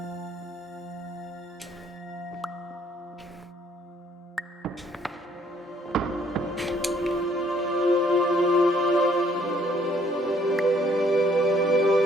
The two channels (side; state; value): both; normal; correlation 0.64